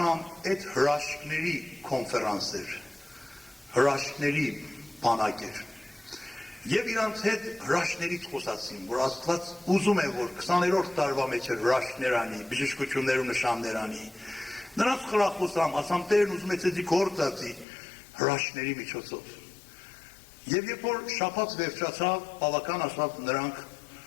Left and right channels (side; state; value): right; drops out; at 17.7 s